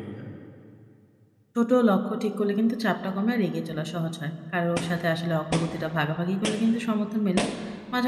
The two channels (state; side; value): identical; both; correlation 1.00